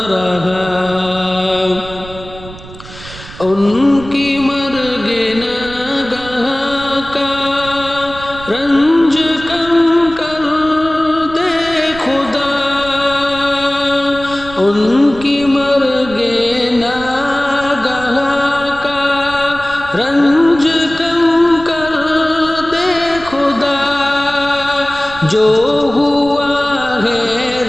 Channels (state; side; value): noise; right; rumble, 16 dB below the sound